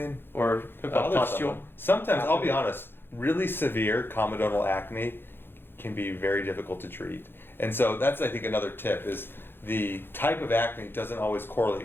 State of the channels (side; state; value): right; late; 0.10 ms